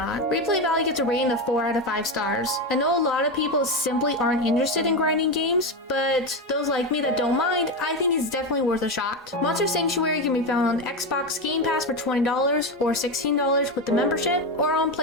Replay value gets a rating of 4 out of 5 stars. I know a lot of people simply aren't interested in grinding games, but those like me that don't mind, I think it's definitely worth a shot. Monster Sanctuary can be found on Xbox Game Pass for $20 or $16 with the membership, or on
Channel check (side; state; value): both; normal; correlation 0.14